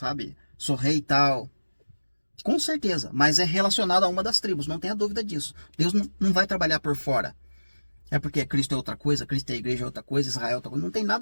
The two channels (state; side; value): inverted; both; correlation -1.00